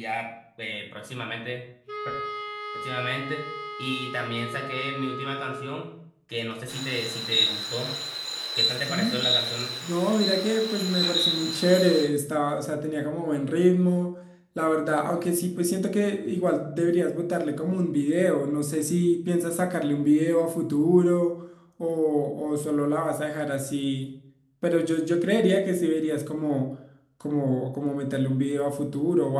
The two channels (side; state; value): both; identical; correlation 1.00